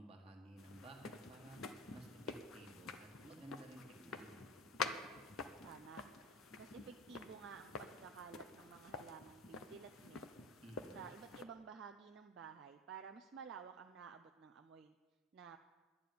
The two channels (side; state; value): both; normal; correlation 0.30